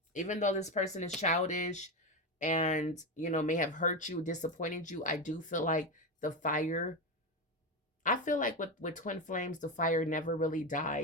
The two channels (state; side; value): normal; both; correlation 0.15